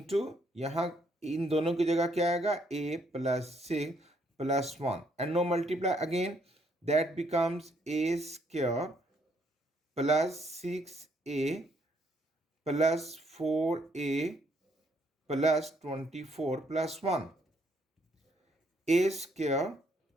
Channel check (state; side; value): normal; both; correlation 0.70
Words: यहाँ इन दोनों की जगह क्या आएगा, a + 6 + 1 and no multiply again, that becomes a² plus 6a plus 4a plus 24 plus 1, a²